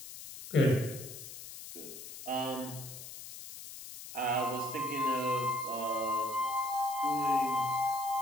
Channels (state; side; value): noise; left; hiss, 12 dB below the sound